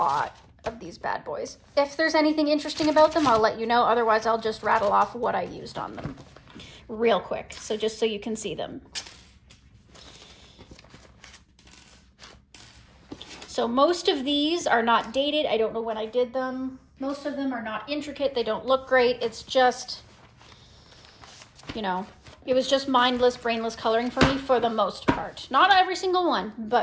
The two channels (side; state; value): both; identical; correlation 1.00